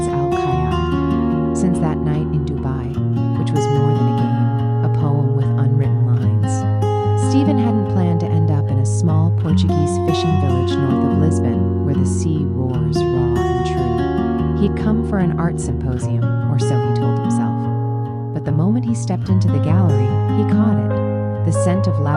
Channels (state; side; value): identical; both; correlation 1.00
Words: Al-Khayyal, since that night in Dubai, which was more than a game, a poem with unwritten lines. Stephen hadn't planned to end up in a small Portuguese fishing village north of Lisbon, where the sea roars raw and true. He'd come for an art symposium, or so he told himself. But the moment he stepped into the gallery, he caught it. The scent of